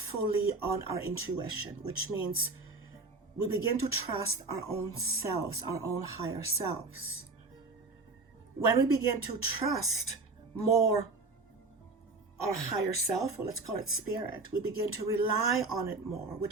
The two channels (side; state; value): left; quieter; 3.6 dB